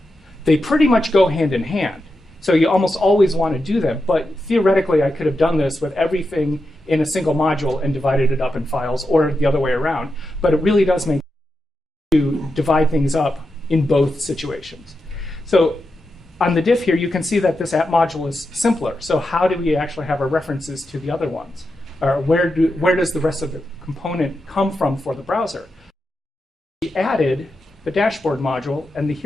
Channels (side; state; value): both; normal; correlation 0.88